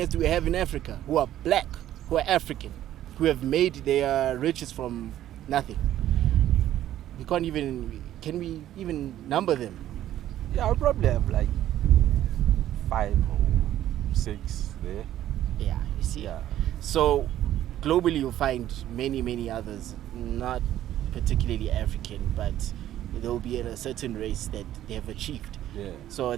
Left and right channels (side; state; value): left; quieter; 12.5 dB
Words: do we have in Africa who are black, who are African, who have made their riches from nothing? Can we even number them? Yeah, I'll probably have like 5 or 6 there. Yeah, you see. Yeah. So globally you'll find many others, not particularly African, but there will be a certain race that they have achieved. Yeah. So